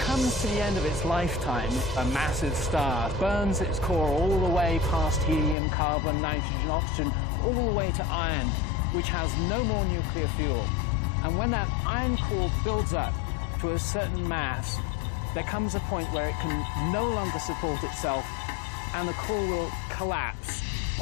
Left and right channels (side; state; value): right; drops out; at 5.6 s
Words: to the end of its lifetime, a massive star burns its core all the way past helium, carbon, nitrogen, oxygen, all the way to iron, which has no more nuclear fuel. And when that iron core builds up to a certain mass, there comes a point where it can no longer support itself, and the core will collapse